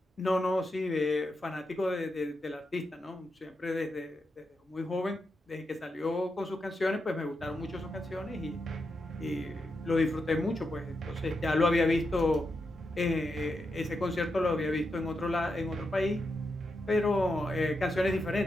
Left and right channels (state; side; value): normal; both; correlation 0.86